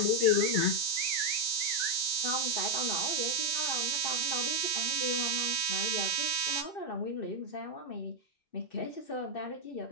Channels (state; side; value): late; right; 2.6 ms